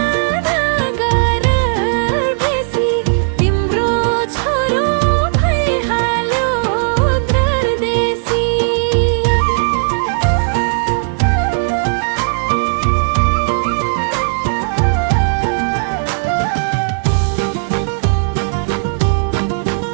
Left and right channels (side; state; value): left; silent; 63 dB below the other